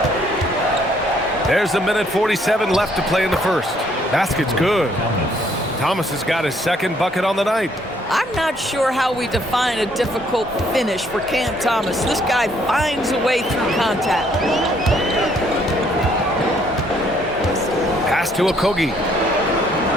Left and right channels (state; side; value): normal; both; correlation 0.66